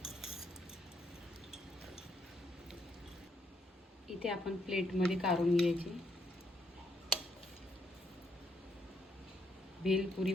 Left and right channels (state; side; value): normal; both; correlation 0.73